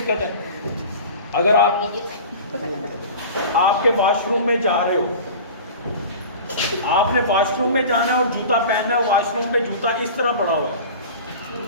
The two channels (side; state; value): both; inverted; correlation -0.37